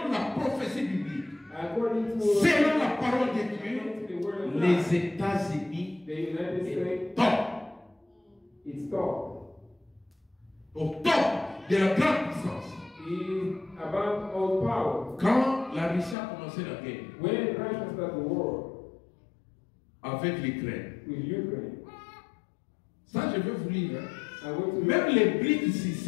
la prophétie biblique, According to selon la parole de Dieu, according to the word of God, les États-Unis the United est States top, is top. au top de la grande puissance. Is above all power. Quand la Russie a commencé la guerre When Russia started the war avec l'Ukraine, with Ukraine, ça je vais vous lire. Hein. I went to Même les BRICS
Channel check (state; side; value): drops out; right; at 16.2 s